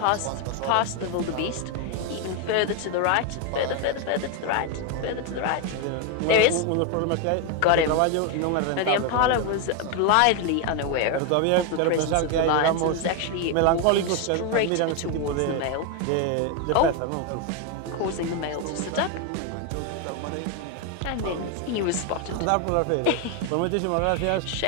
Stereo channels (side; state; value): both; different; correlation 0.01